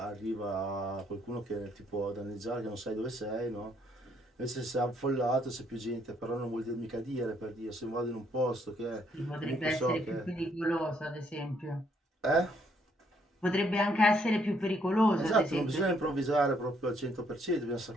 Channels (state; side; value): normal; both; correlation 0.69